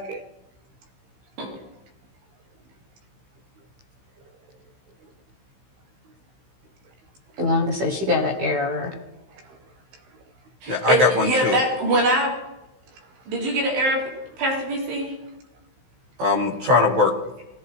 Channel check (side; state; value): left; late; 16 ms